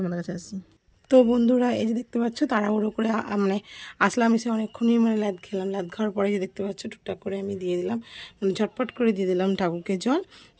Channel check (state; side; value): identical; both; correlation 1.00